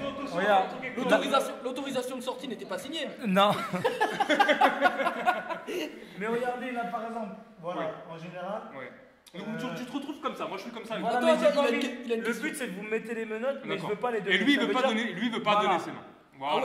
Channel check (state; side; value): identical; both; correlation 1.00